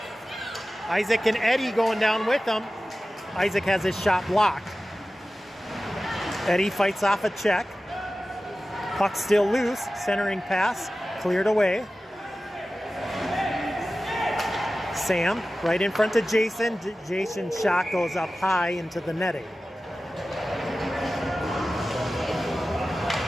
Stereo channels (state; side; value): normal; both; correlation 0.95